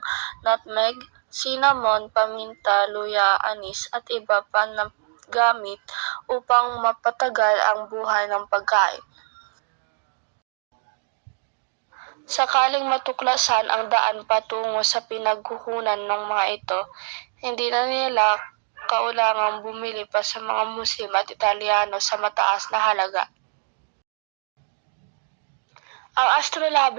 nutmeg, cinnamon, paminta, luya, anis at iba pa na gamit upang mapatagal ang buhay ng pagkain. Sakaling matuklasan ang daan patungo sa pinagkukunan ng mga ito, hindi na nila kaulangang bumili pa sa mga Muslim at Italyano sa mataas na halaga. Ang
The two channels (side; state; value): left; silent; digital silence